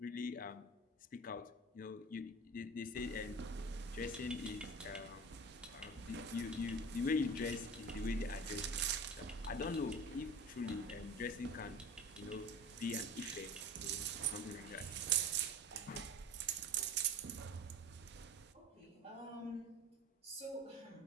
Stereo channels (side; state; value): both; normal; correlation 0.34